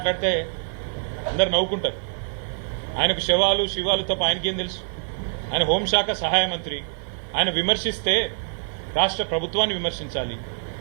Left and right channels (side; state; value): left; silent; digital silence